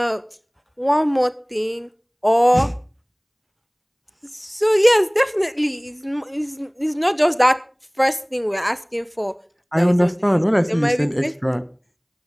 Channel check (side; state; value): both; identical; correlation 1.00